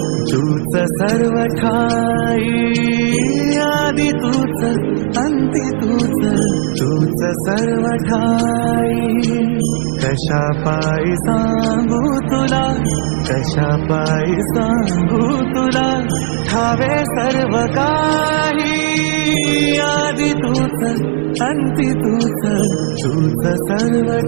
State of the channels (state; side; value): silent; left; digital silence